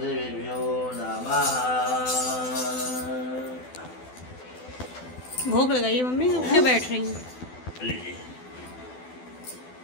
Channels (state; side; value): late; right; 12 ms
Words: देवेभ्यो नमः। भोग लगाइए मम्मी, अब क्यों बैठ रही हैं? लीजिए।